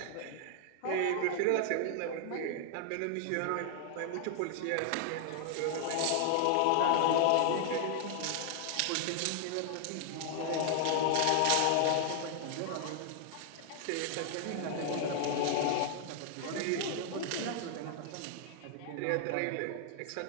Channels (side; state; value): both; different; correlation 0.00